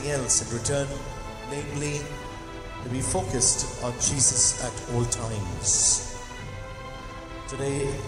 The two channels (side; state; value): both; identical; correlation 1.00